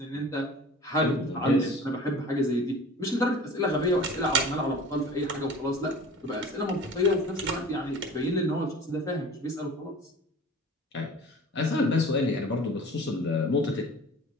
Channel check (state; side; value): normal; both; correlation 0.42